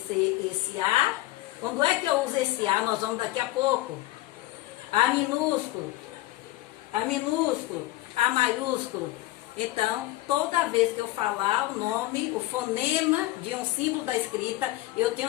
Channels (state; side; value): quieter; right; 17.3 dB